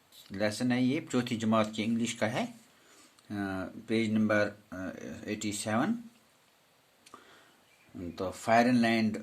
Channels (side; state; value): both; identical; correlation 1.00